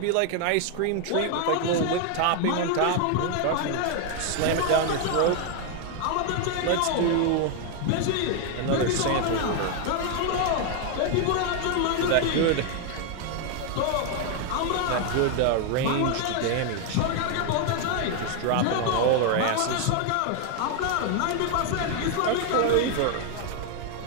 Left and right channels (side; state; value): both; different; correlation 0.00